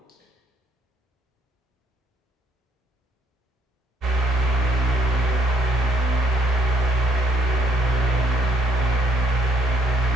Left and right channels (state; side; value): normal; both; correlation 0.67